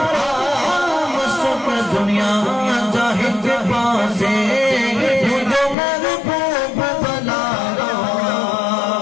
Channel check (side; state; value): right; drops out; at 5.8 s